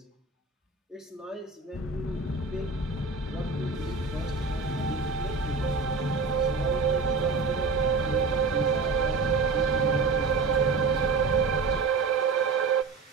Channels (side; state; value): left; quieter; 4.3 dB